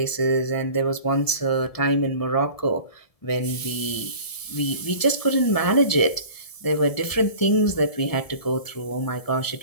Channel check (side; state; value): right; late; 1.7 ms